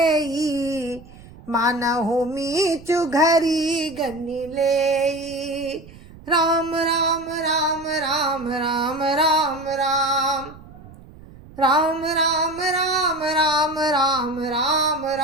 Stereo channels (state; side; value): noise; right; rumble, 20 dB below the sound